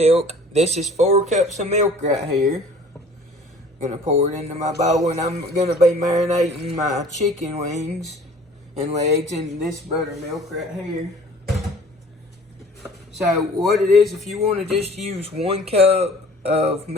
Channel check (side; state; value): both; normal; correlation 0.49